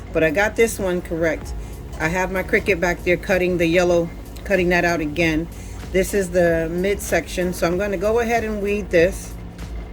But I got this one correct. I have my Cricut back there cutting the yellow, cutting that out again. This is the midsection, so I'm going to go ahead and weed this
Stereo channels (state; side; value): identical; both; correlation 1.00